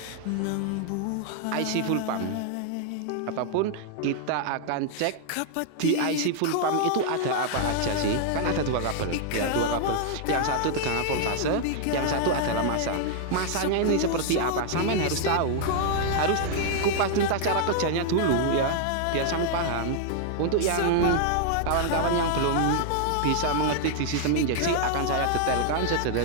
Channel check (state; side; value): different; both; correlation 0.00